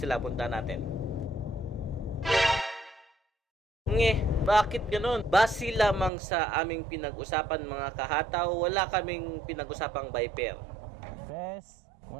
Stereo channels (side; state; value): left; drops out; at 6.1 s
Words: punta natin. Bakit ganun? Base lamang sa aming pinag-usapan mga kahataw, wala kaming pinag-usapang Viper. Pes,